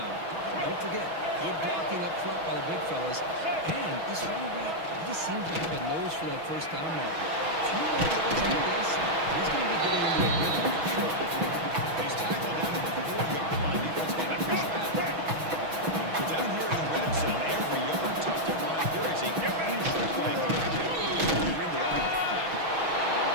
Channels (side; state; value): left; late; 6.2 ms